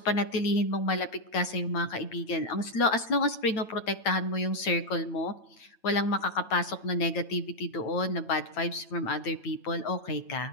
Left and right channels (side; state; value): right; late; 9.0 ms